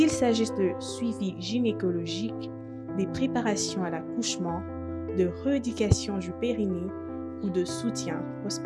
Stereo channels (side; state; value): both; identical; correlation 1.00